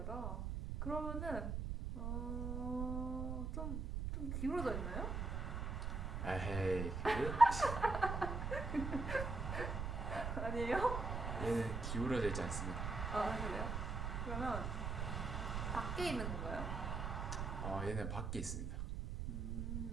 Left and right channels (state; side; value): noise; right; rumble, 2 dB below the sound